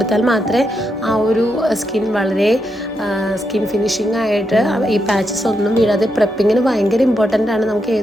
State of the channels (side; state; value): both; normal; correlation 0.83